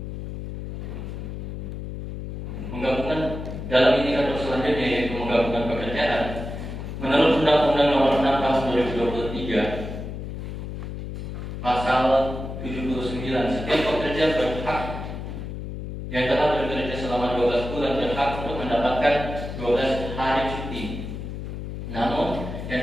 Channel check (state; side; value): noise; left; hum, 7 dB below the sound